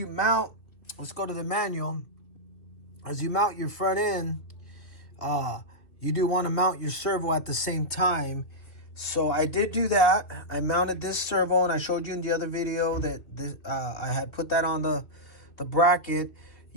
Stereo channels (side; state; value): right; late; 2.3 ms